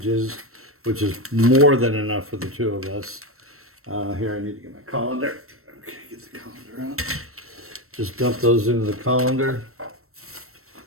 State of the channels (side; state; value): left; late; 0.63 ms